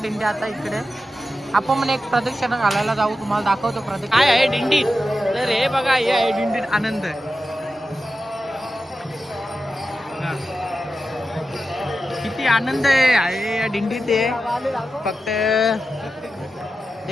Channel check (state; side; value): normal; both; correlation 0.91